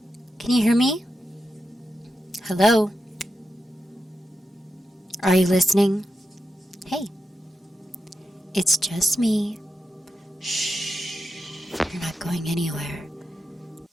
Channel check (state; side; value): normal; both; correlation 0.88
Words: Can you hear me? Hello? Are you listening? Hey, it's just me. Shh, you're not going anywhere.